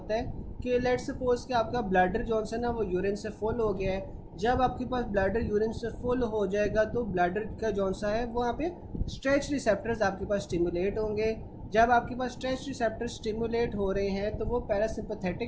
है कि लेट सपोज कि आपका ब्लैडर जो है ना वो यूरिन से फुल हो गया है। जब आपके पास ब्लैडर यूरिन से फुल हो जाएगा तो ब्लैडर का जौन सा है वहाँ पे स्ट्रेच रिसेप्टर्स आपके पास स्टिमुलेट होंगे। जब आपके पास स्ट्रेच रिसेप्टर्स स्टिमुलेट हो रहे हैं तो वो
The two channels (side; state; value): both; identical; correlation 1.00